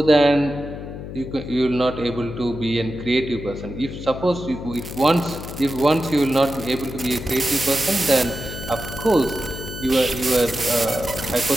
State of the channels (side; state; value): left; noise; hum, 10 dB below the sound